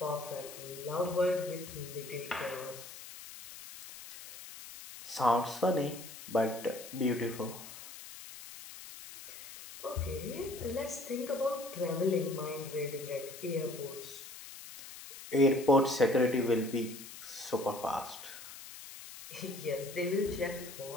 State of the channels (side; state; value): left; noise; hiss, 14 dB below the sound